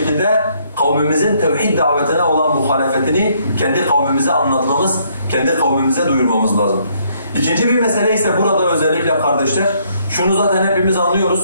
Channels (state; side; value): inverted; both; correlation -0.68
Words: kavmimizin tevhid davetine olan muhalefetini kendi kavmimize anlatmamız, kendi kavmimize duyurmamız lazım. İkinci bir mesele ise burada özellikle kardeşler, şunu zaten hepimiz